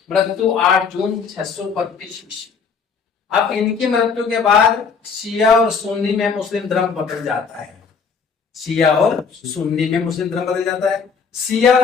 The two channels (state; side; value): quieter; right; 5.8 dB